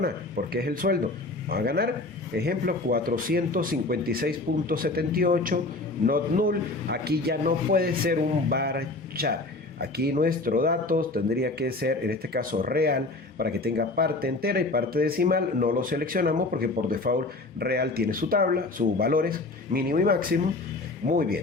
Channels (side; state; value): right; quieter; 3.1 dB